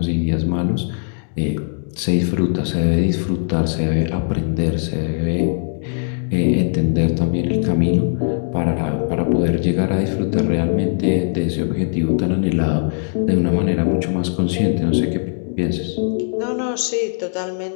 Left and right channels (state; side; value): silent; right; digital silence